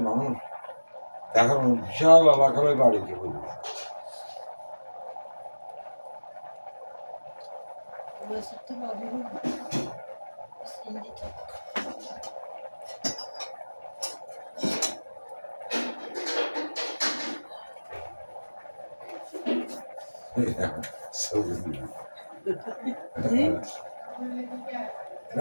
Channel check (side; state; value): both; inverted; correlation -1.00